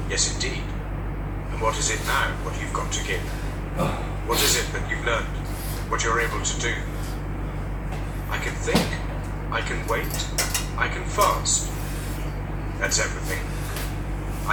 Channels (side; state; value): both; identical; correlation 1.00